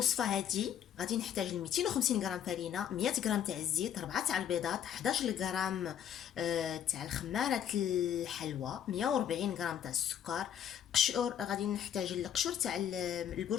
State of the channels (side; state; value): right; quieter; 9.5 dB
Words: هادي غادي نحتاج 250 غرام فرينه، 100 غرام تاع الزيت، 4 تاع البيضات، 11 غرام تاع الخماره الحلوى، 140 غرام تاع السكر، قشور. غادي نحتاج القشور تاع